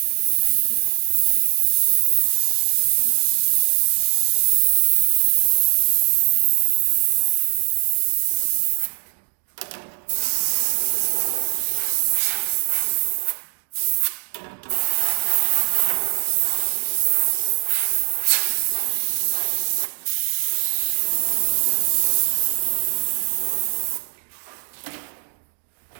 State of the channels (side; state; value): left; silent; digital silence